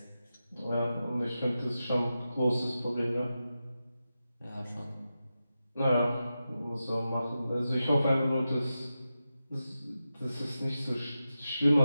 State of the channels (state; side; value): inverted; both; correlation -0.91